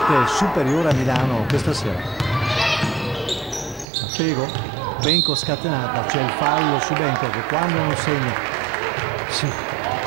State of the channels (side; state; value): left; drops out; at 3.9 s